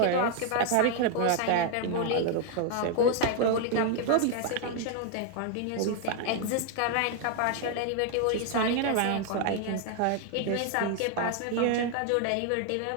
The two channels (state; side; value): different; both; correlation 0.00